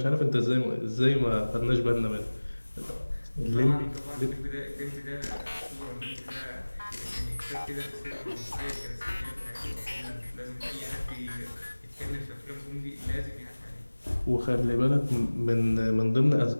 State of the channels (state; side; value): inverted; both; correlation -1.00